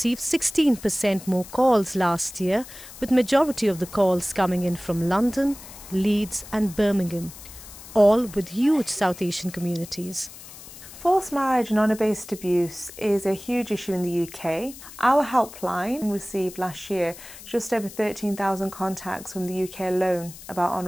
16% more calls last year, with majority of the calls coming in from London, Leeds and Birmingham, all with huge South Asian communities. Forced marriage and honour-based abuse is a huge issue in the UK. Our helpline received last year just over 13,000 contacts from the UK alone about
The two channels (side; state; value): left; noise; hiss, 16 dB below the sound